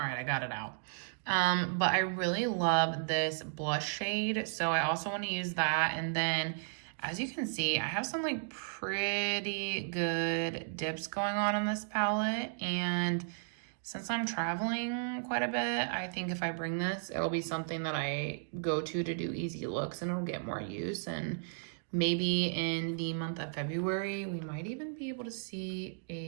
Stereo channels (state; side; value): silent; left; digital silence